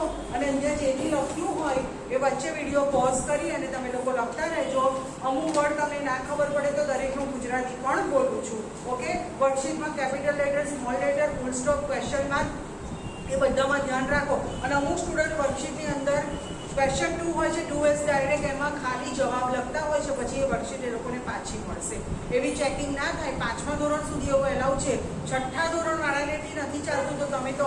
અને અહીંયા જે બી લખ્યું હોય એ વચ્ચે વિડીયો પોઝ કરી અને તમે લોકો લખતા રહેજો. અમુક વર્ડ તમને ના ખબર પડે તો દરેકનું ગુજરાતી પણ બોલું છું. ઓકે, વર્કશીટમાં capital letter, small letter, full stop, question mark એ બધામાં ધ્યાન રાખો. અને અમુક સ્ટુડન્ટ વર્કશીટની અંદર ક્વેશ્ચન 2 હોય છે, 2S ડાયરેક્ટ એમાં ખાલી જવાબ લખતા હોય છે, પછી એ વર્કશીટ એ લોકોને પાછી મળશે. એવી ચેકિંગ ના થાય. 5મા ધોરણ સુધી એવું એલાઉ છે. 6ઠ્ઠા ધોરણવાળાને નથી ચાલતું તો તમે તો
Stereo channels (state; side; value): identical; both; correlation 1.00